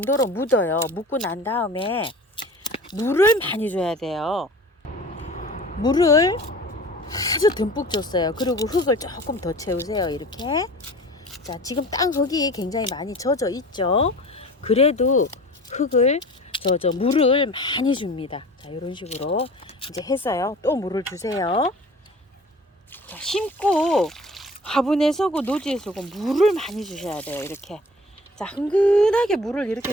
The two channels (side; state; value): both; normal; correlation 0.42